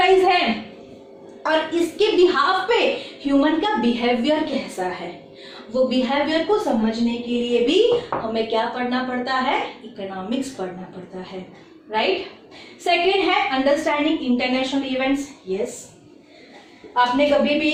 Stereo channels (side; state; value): both; identical; correlation 1.00